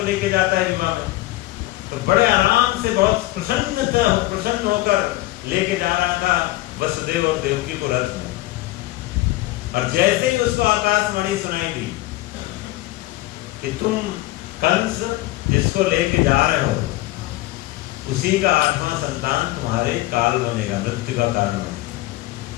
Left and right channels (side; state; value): right; quieter; 18.1 dB